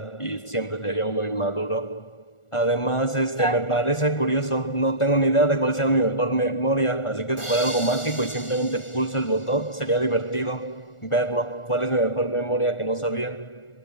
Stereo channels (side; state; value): right; late; 1.4 ms